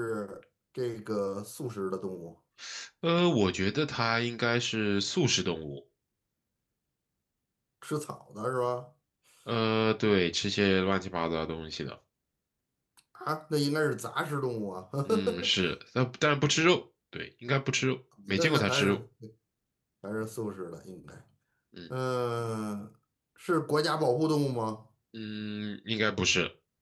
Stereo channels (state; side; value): identical; both; correlation 1.00